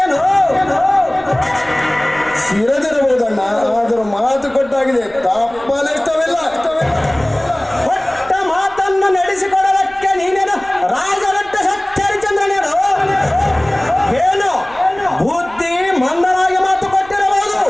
ಶಿರದಿರಬಹುದಣ್ಣ, ಆದರೂ ಮಾತು ಕೊಟ್ಟಾಗಿದೆ, ತಪ್ಪಲಿಷ್ಟವಿಲ್ಲ. ಕೊಟ್ಟ ಮಾತನ್ನು ನಡೆಸಿಕೊಡಲಕ್ಕೆ ನೀನೇನು ರಾಜರಟ್ಟ ಸಚ್ಚರಿಚಂದ್ರನೇನು? ಏನು ಬುದ್ಧಿ ಮಂದರಾಗಿ ಮಾತು ಕೊಟ್ಟಿರಬಹುದು.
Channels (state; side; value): noise; right; rumble, 24 dB below the sound